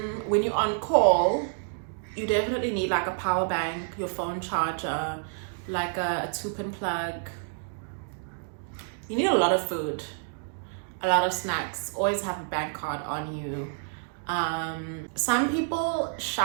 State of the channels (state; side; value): silent; left; digital silence